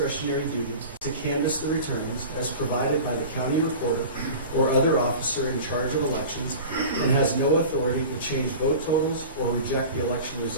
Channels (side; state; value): both; inverted; correlation -0.36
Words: duty to canvass the returns as provided by the county recorder or other officer in charge of elections, and has no authority to change vote totals or reject the election